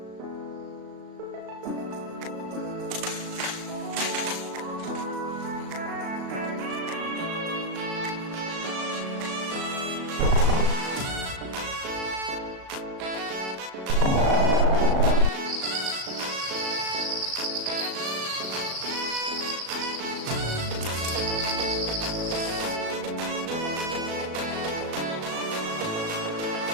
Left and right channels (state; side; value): late; left; 37 ms